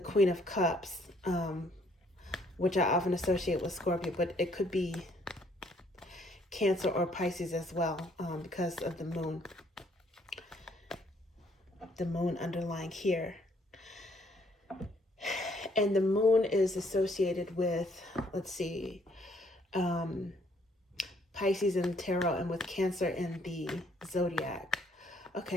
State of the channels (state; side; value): normal; both; correlation 0.65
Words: Queen of Cups, which I often associate with Scorpio, but it could be Cancer or Pisces as well, because of the moon. The moon underlying here. And the moon is associated with, let's see, Pisces in the tarot, and with Cancer in the zodiac.